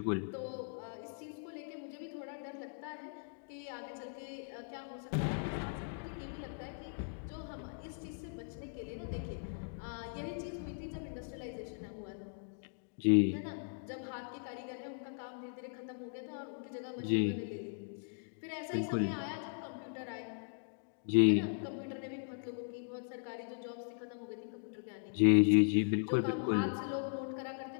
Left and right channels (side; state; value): right; silent; digital silence